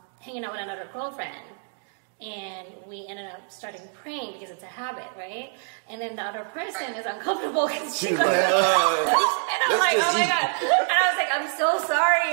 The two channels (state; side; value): silent; left; 55 dB below the other